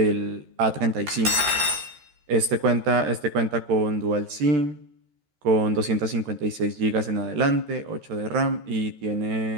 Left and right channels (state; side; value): late; left; 13 ms